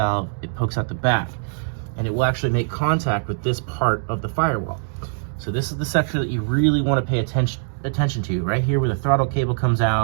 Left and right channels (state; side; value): silent; left; digital silence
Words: it pokes out the back. And it will actually make contact with this part of the firewall. So this is the section that you really want to pay attention to, right here where the throttle cable comes